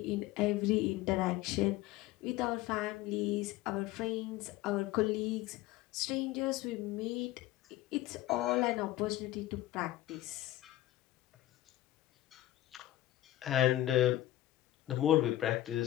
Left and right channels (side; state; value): right; quieter; 15.2 dB